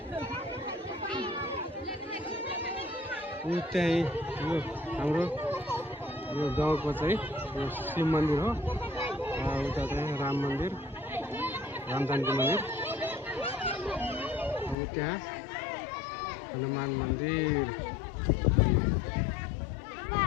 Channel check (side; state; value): right; drops out; at 14.8 s